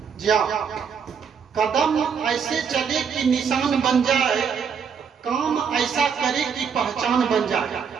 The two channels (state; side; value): quieter; left; 6.7 dB